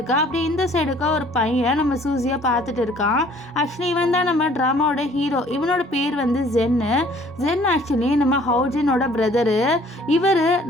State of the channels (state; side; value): normal; both; correlation 0.56